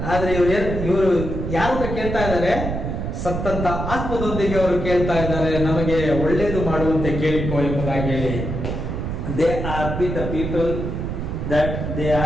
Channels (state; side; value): noise; right; rumble, 4 dB below the sound